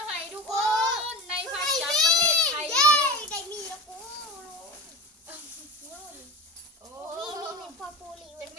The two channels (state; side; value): normal; both; correlation 0.29